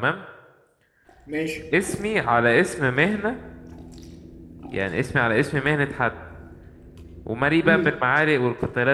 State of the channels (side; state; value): both; identical; correlation 1.00